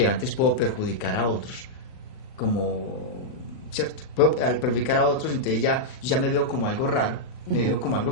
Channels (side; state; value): right; late; 38 ms